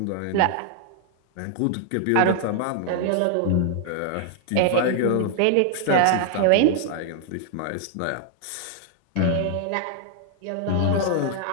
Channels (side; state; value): both; different; correlation 0.00